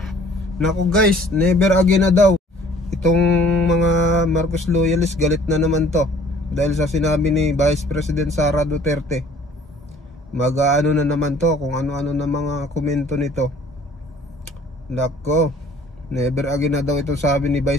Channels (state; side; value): normal; both; correlation 0.54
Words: Nako guys, never again na daw. Itong mga Marcos loyalists galit na naman to. Dahil sa sinabi ni Vice President Sara Duterte. Mag-ano na naman to kung ano-ano na mga komento nito. Nako. Never again na daw itong sabi ni